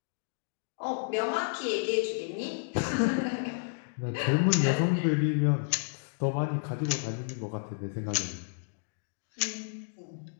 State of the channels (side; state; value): right; silent; digital silence